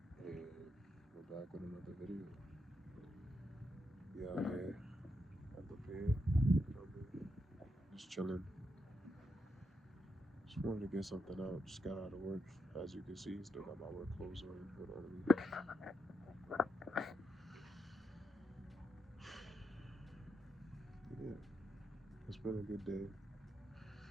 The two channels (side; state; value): both; normal; correlation 0.83